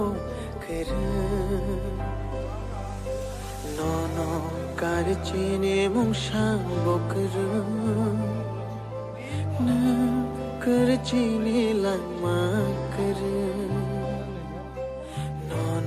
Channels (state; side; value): identical; both; correlation 1.00